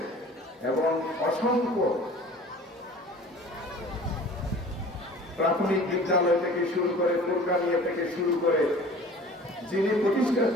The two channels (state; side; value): normal; both; correlation 0.44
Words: এবং অসংখ্য প্রাথমিক বিদ্যালয় থেকে শুরু করে ফুরকানিয়া থেকে শুরু করে যিনি প্রতিষ্ঠা